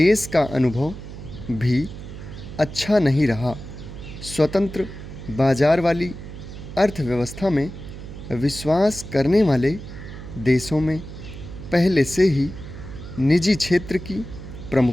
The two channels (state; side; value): noise; right; hum, 12 dB below the sound